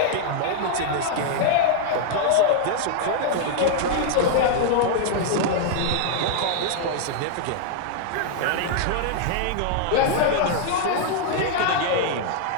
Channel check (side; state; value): both; different; correlation 0.00